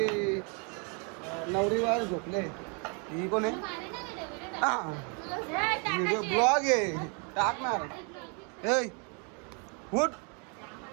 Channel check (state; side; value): quieter; left; 35.6 dB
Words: नवरीवार झोपले. ही कोण आहे. ब्लॉग आहे टाकणार.